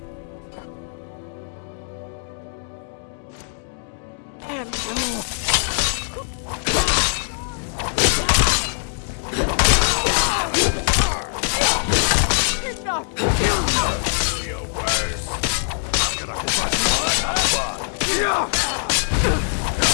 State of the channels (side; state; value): right; silent; 64 dB below the other